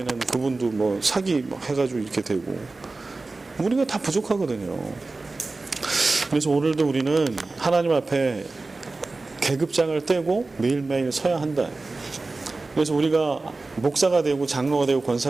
그분도 뭐 사기 해가지고 이렇게 되고, 우리가 다 부족하거든요. 그래서 오늘도 우리는 하나님 앞에 계급장을 떼고 매일매일 서야 한다. 그래서 우리가 목사가 되고 장로가 되고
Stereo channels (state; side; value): quieter; left; 3.5 dB